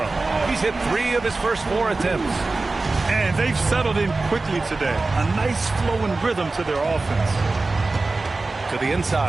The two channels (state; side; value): quieter; left; 3.5 dB